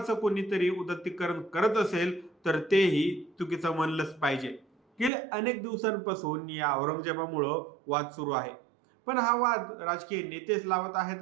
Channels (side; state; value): left; drops out; at 5.1 s